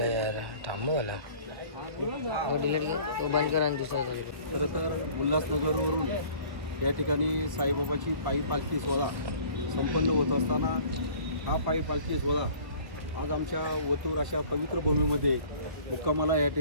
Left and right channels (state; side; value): late; left; 1.4 ms